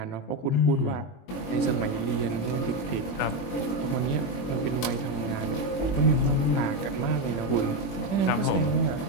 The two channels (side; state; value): right; late; 21 ms